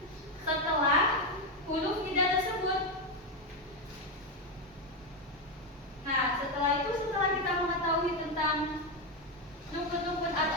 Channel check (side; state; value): both; normal; correlation 0.08